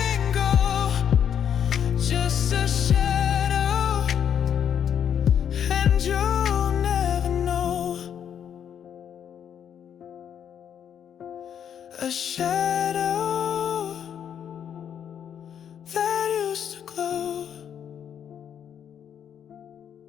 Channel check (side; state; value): right; quieter; 8.7 dB